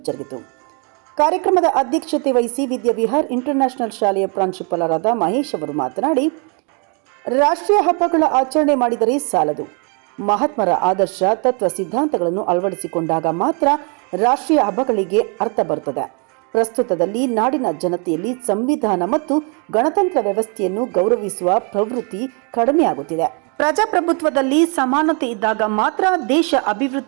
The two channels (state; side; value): quieter; left; 35.5 dB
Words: ಜರುಗಿತು. ಕಾರ್ಯಕ್ರಮದ ಅಧ್ಯಕ್ಷತೆ ವಹಿಸಿ ವಿದ್ಯಾವಿಹಾರ್ ಇಂಟರ್ನ್ಯಾಷನಲ್ ಶಾಲೆಯ ಪ್ರಾಂಶುಪಾಲರಾದ ಮಹೇಶ್ ಅವರು ಮಾತನಾಡಿ, ರಾಷ್ಟ್ರೀಯ ಹಬ್ಬಗಳ ಆಚರಣೆ ಮಾಡಿದರೆ ಸಾಲದು. ಮಹಾತ್ಮರ ಆದರ್ಶ ತತ್ವ ಸಿದ್ಧಾಂತಗಳನ್ನು ಅಳವಡಿಸಿಕೊಂಡಾಗ ಮಾತ್ರ ರಾಷ್ಟ್ರೀಯ ಹಬ್ಬಗಳಿಗೆ ಅರ್ಥ ಬರುತ್ತದೆ. ಪ್ರಸ್ತುತದಲ್ಲಿ ನಾಡಿನ ಜನತೆಯಲ್ಲಿ ಸಂವಿಧಾನ ಮತ್ತು ಗಣತಂತ್ರ ವ್ಯವಸ್ಥೆಯನ್ನು ಗೌರವಿಸುವ ಪ್ರವೃತ್ತಿ ಕಡಿಮೆಯಾಗುತ್ತಿದೆ. ಪ್ರಜಾಪ್ರಭುತ್ವದಲ್ಲಿ ಸಮಾನತೆ ಇದ್ದಾಗ ಮಾತ್ರ ದೇಶ